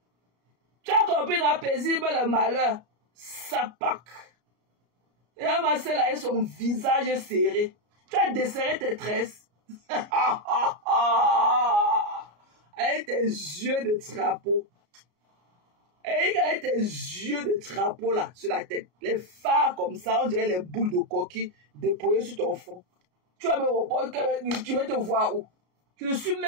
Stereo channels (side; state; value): left; late; 34 ms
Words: Tu as compris dans paisible le malheur. Ça pack. Et un massé là, son visage serré. Tu as desserré tes tresses. Avec tes yeux de trapeau. Et avec tes yeux de trapeau là, sur la tête. Les phares comme ça, on dirait les boules de coquille déployées sur ton front. Tu vas me répondre, tu veux te voir où? Je ne suis